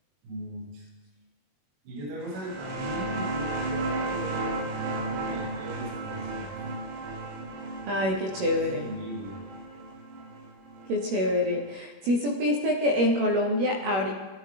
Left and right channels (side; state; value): left; late; 21 ms